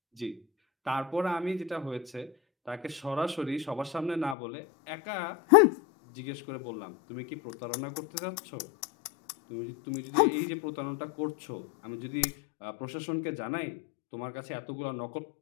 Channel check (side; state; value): right; drops out; at 4.4 s